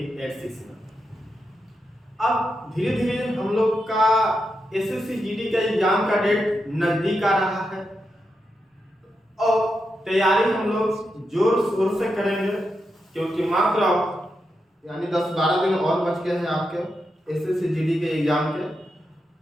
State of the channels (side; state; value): both; normal; correlation 0.86